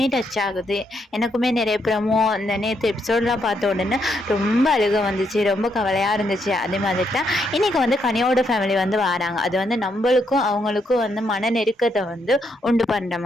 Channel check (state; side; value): normal; both; correlation 0.77